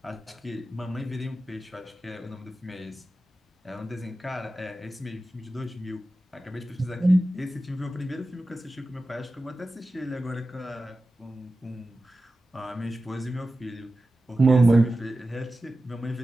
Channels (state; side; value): normal; both; correlation 0.94